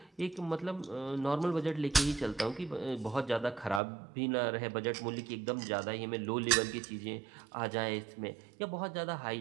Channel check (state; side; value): drops out; left; at 3.8 s